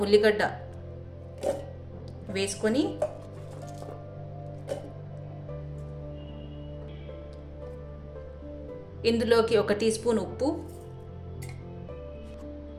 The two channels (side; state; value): both; identical; correlation 1.00